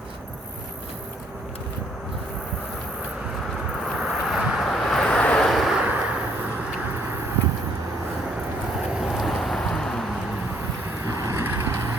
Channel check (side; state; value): both; normal; correlation 0.66